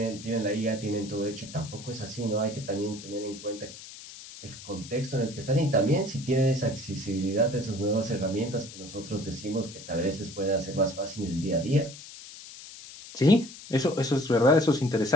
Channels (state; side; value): noise; left; hiss, 15 dB below the sound